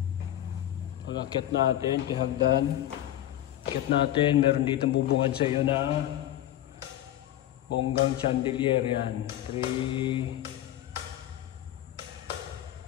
Pag-akit natin, kahagdan. Akit natin, meron dito bubungad sa iyo na bonggang chandelier yan. 3.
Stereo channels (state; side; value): quieter; right; 12.9 dB